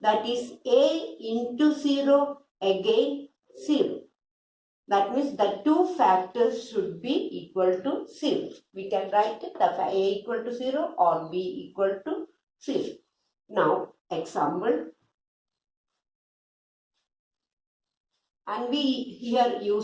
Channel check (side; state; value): both; identical; correlation 1.00